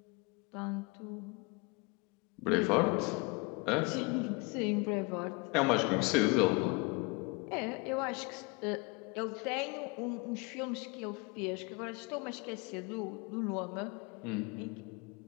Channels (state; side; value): quieter; right; 28.5 dB